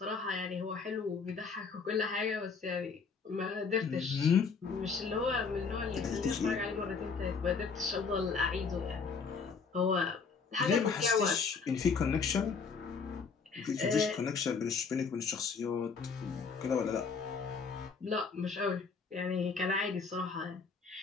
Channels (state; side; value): quieter; right; 5.2 dB